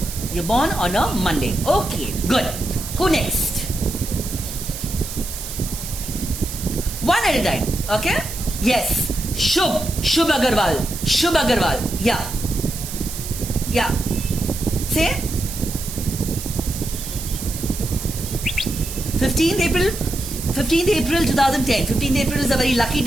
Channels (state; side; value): noise; right; hiss, 9 dB below the sound